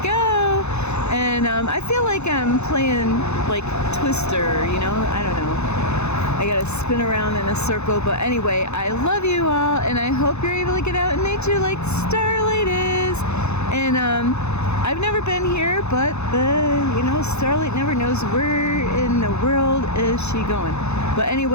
And I feel like I'm playing like Twister, you know? I don't know. I gotta spin around in a circle. But anyway, I love you all, and I hope you're able to get out in nature like Starlight is. And I've never been here, but Starlight never knows where in the world is she going. But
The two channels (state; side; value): late; right; 0.81 ms